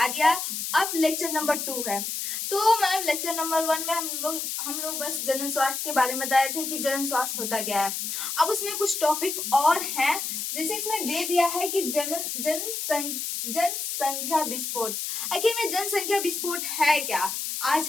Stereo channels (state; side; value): noise; left; hiss, 3 dB below the sound